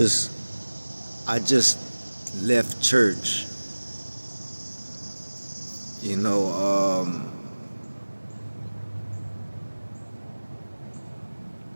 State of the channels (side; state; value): both; inverted; correlation -1.00